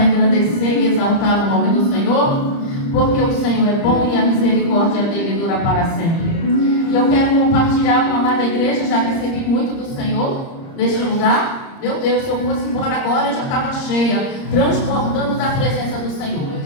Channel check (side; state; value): right; late; 30 ms